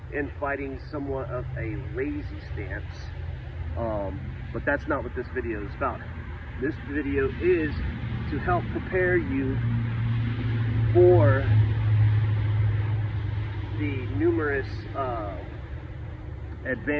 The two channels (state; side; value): identical; both; correlation 1.00